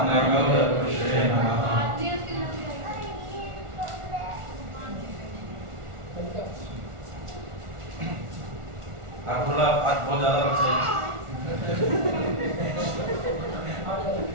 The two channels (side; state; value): left; late; 1.4 ms